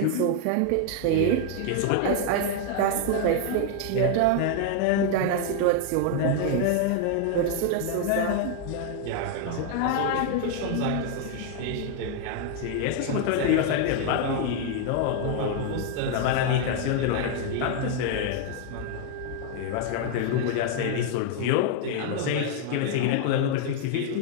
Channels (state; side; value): different; both; correlation 0.00